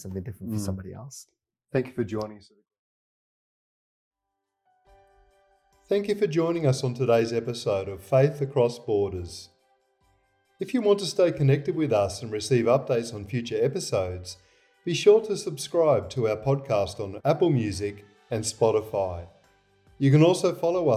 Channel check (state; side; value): identical; both; correlation 1.00